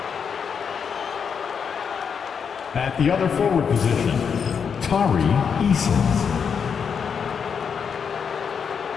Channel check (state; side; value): quieter; right; 6.7 dB